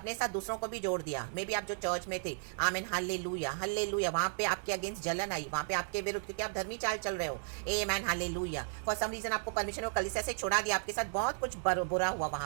साथ दूसरों को भी जोड़ दिया। मे बी आप जो चर्च में थे, आमेन हालेलुया हालेलुया, वहाँ पे आपके अगेंस्ट जलन आई, वहाँ पे आपके विरुद्ध, क्योंकि आप धर्मी चाल चल रहे हो। Amen hallelujah. For some reason आपको परमेश्वर ने कलीसिया से छोड़ा दिया, आपके साथ बहुत कुछ बुरा हुआ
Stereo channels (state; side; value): silent; left; digital silence